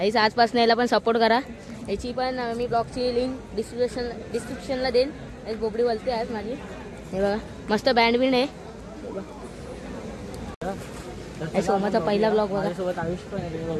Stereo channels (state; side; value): identical; both; correlation 1.00